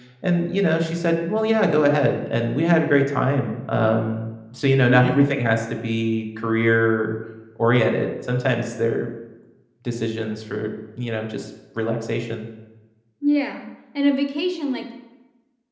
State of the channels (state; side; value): identical; both; correlation 1.00